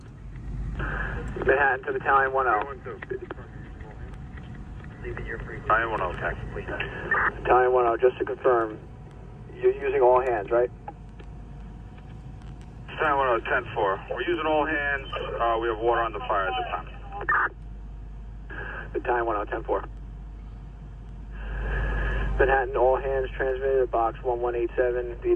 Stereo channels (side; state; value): both; identical; correlation 1.00